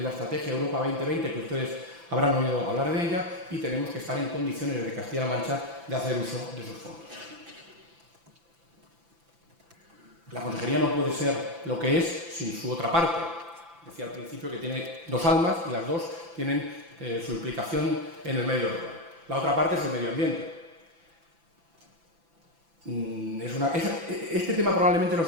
la Estrategia Europa 2020 que ustedes habrán oído hablar de ella y tenemos que estar en condiciones desde Castilla-La Mancha de hacer uso de esos fondos. La consejería no puede ser lo que es sin su otra parte. Decía al principio que tiene dos almas y las dos tienen su implicación en el medio rural. La otra parte es el medio ambiente. Este tema probablemente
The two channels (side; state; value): left; late; 5.9 ms